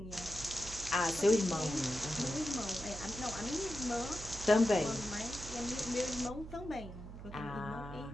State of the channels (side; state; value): right; noise; hum, 12 dB below the sound